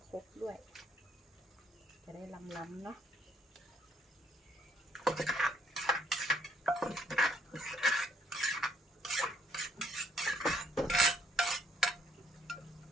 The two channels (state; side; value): normal; both; correlation 0.68